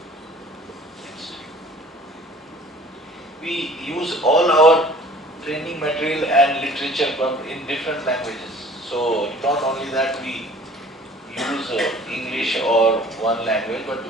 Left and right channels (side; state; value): both; normal; correlation 0.50